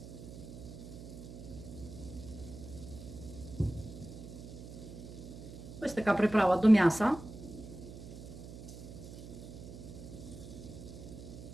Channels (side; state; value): right; noise; hum, 12 dB below the sound